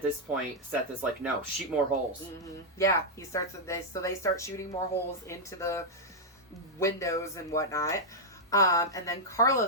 this point, Seth is like, no, shoot more holes. Mm-hmm. Yeah, he starts with this. So they start shooting more holes into the windows and whatnot. And then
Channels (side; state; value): both; normal; correlation -0.04